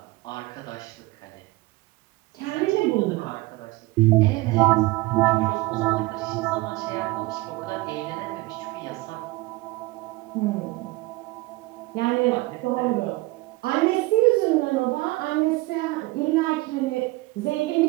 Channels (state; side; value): quieter; left; 21.0 dB